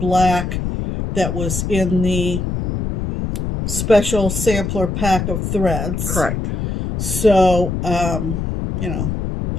that was in the special sampler pack of threads. Correct. So, that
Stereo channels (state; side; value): noise; left; rumble, 3 dB below the sound